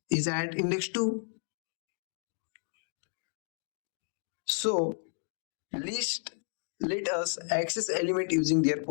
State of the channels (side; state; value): right; silent; 56 dB below the other